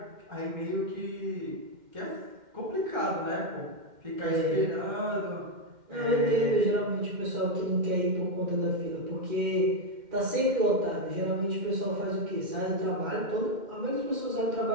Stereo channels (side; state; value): left; late; 2.1 ms